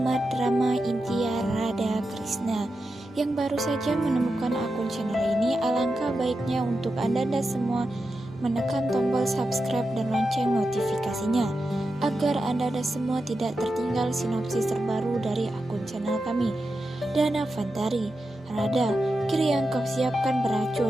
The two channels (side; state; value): both; normal; correlation 0.89